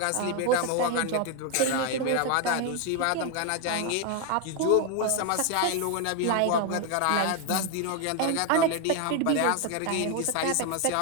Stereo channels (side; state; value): both; different; correlation 0.01